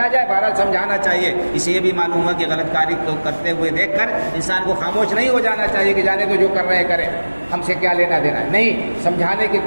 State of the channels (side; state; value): both; inverted; correlation -1.00